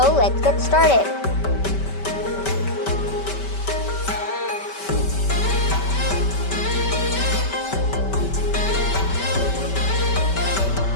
let's get started.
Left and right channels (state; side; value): late; right; 5.2 ms